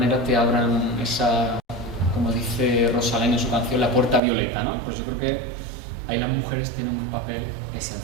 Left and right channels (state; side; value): drops out; left; at 4.2 s